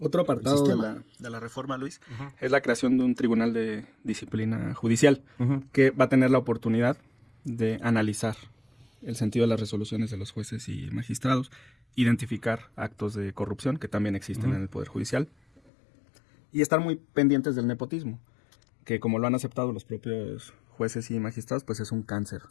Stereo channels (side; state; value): right; drops out; at 15.6 s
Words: apartado de la reforma, Luis, es la creación de un tribunal de disciplina judicial, que va a tener la oportunidad de analizar el sentido de las resoluciones de los jueces y magistrados, identificar actos de corrupción que también existen en el Poder Judicial, y estar muy pendientes del nepotismo, que como lo han aceptado los propios jueces y magistrados, pues es un cáncer